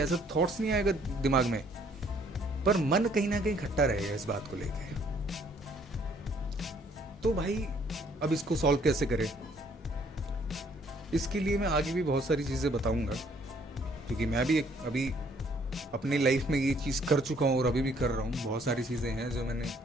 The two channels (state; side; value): normal; both; correlation 0.63